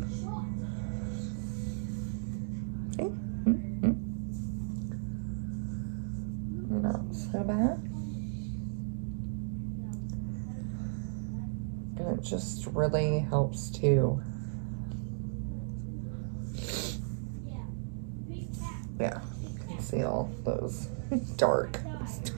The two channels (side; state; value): left; silent; digital silence